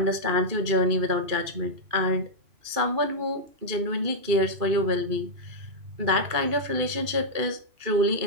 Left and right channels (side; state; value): left; late; 2.5 ms